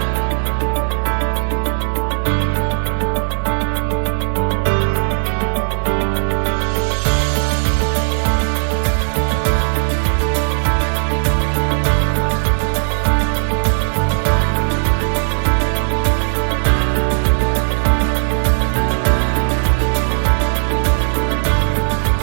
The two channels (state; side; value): silent; left; digital silence